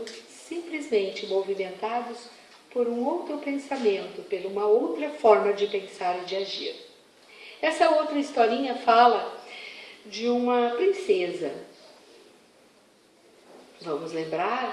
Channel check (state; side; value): identical; both; correlation 1.00